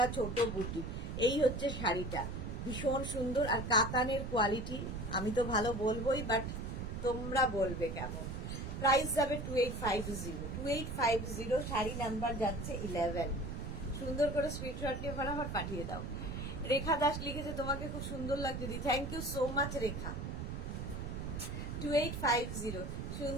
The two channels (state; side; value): noise; right; rumble, 5 dB below the sound